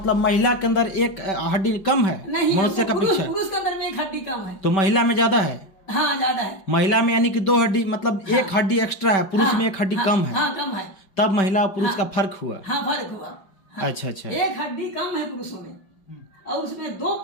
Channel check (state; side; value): late; right; 5.2 ms